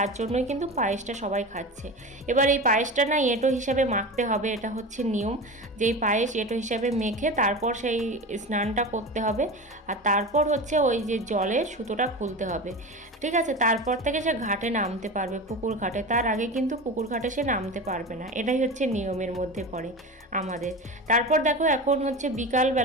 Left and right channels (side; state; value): both; normal; correlation 0.28